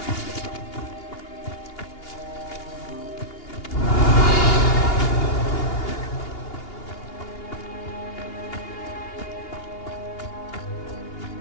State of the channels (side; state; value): right; late; 2.8 ms